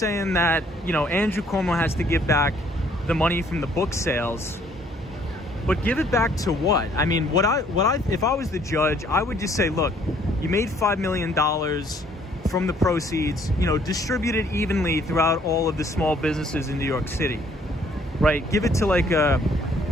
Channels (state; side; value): normal; both; correlation 0.62